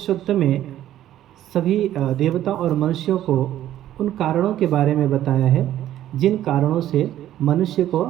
सूत्र में सभी देवता और मनुष्यों को उन कारणों के बारे में बताया है जिन कारणों से मनुष्य को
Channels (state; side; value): quieter; left; 12.5 dB